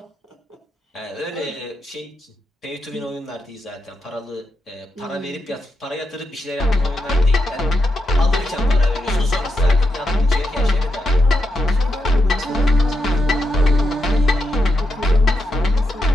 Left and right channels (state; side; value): normal; both; correlation 0.84